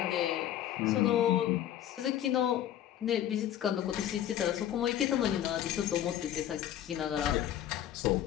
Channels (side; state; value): right; quieter; 11.4 dB